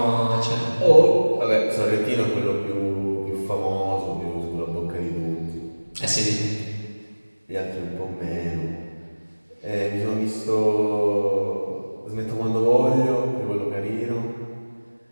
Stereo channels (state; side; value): inverted; both; correlation -1.00